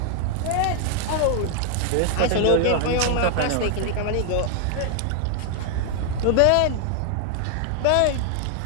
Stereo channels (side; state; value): both; different; correlation 0.00